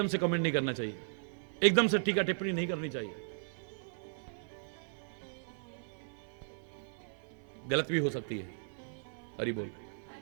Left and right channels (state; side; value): silent; left; 54 dB below the other